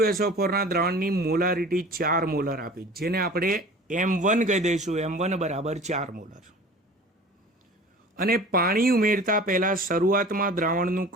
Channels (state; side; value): normal; both; correlation 0.42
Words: ના દ્રાવણની મોલારિટી 4 મોલર આપી, જેને આપણે M1 કહી દઈશું. M1 બરાબર 4 મોલર. અને પાણી ઉમેરતા પહેલા શરૂઆતમાં દ્રાવણનું